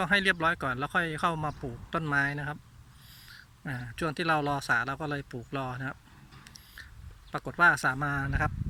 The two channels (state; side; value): identical; both; correlation 1.00